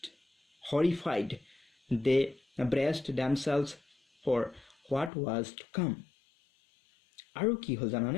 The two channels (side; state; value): right; drops out; at 5.1 s